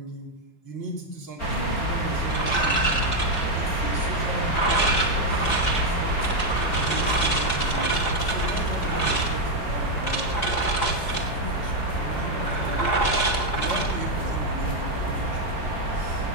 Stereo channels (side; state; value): right; late; 4.3 ms